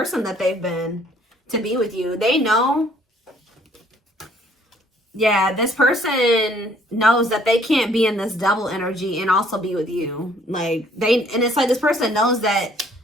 that they've been to be with you. They know. Yeah, this person knows that they can't be in this double energy and also be with you. Like, and it's like this person knows that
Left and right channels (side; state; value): both; normal; correlation 0.62